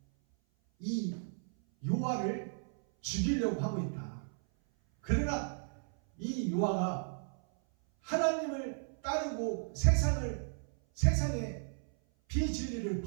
이 요아를 죽이려고 하고 있다. 그러나 이 요아가 하나님을 따르고 세상의 비진리를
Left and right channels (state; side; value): silent; left; 55 dB below the other